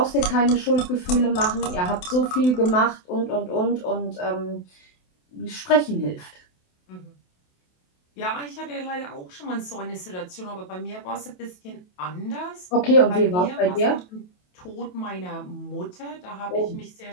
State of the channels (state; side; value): late; right; 28 ms